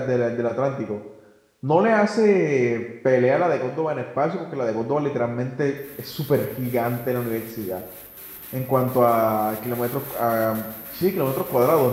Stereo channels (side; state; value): both; identical; correlation 1.00